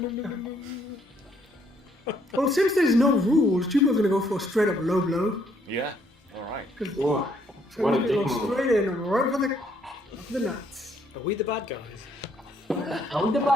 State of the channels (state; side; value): normal; both; correlation 0.68